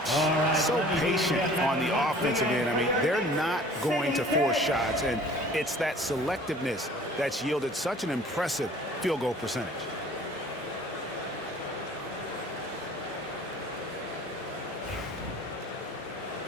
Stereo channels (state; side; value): normal; both; correlation 0.49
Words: So patient on the offensive end. I mean, they're not going to force shots, and it's that selectiveness that's yielded such an impressive field goal percentage.